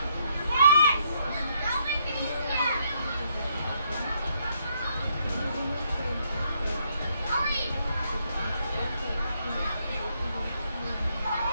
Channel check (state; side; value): inverted; both; correlation -0.73